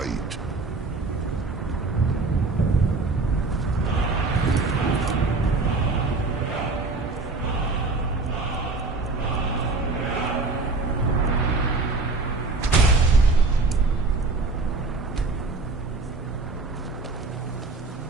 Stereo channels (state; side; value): quieter; left; 3.7 dB